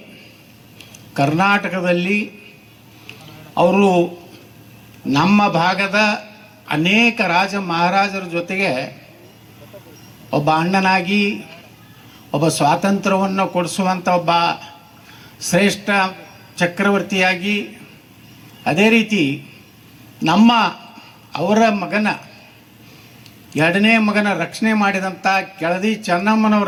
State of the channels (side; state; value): both; identical; correlation 1.00